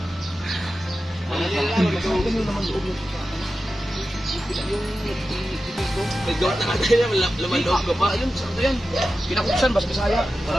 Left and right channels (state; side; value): normal; both; correlation 0.92